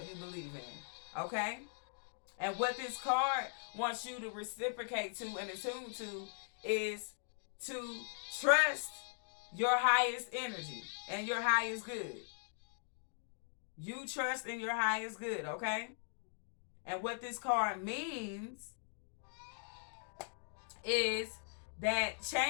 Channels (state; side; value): silent; right; digital silence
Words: you believe in, okay? And what this card wants you to reciprocate to and attune to is to trust your highest energy and your highest good. You trust in your highest good, okay? And what this card means is that